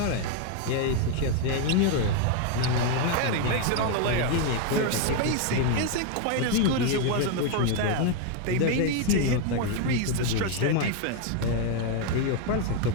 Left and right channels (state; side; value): different; both; correlation 0.01